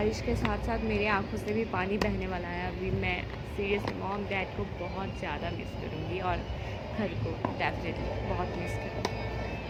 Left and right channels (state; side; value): identical; both; correlation 1.00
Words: के साथ साथ मेरे आंखों से भी पानी बहने वाला है. अभी मैं सीरियसली मॉम डैड को बहुत ज़्यादा मिस करूँगी और घर को डेफिनेटली बहुत मिस करूँगी.